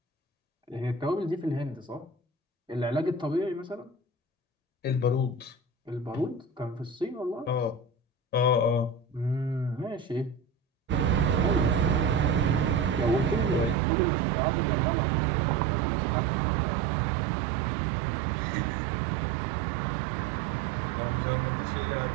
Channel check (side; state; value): left; drops out; at 13.8 s